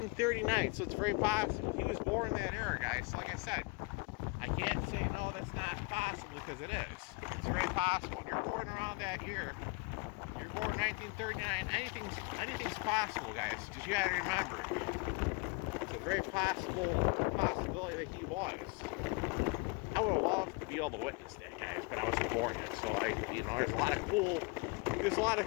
So it's very possible he was born in that era, guys. So like I said, I can't say no, that's not possible because it is. It's very possible. If you're born around that year, you're born in 1939. Anything's possible, guys. Just you gotta remember. Very possibility that he was. I would have loved to be able to witness that, guys, but I wasn't born yet. So there's a lot of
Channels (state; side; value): quieter; right; 28.2 dB